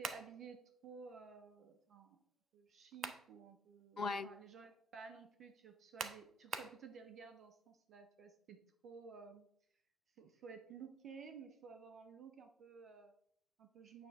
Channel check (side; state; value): both; normal; correlation 0.62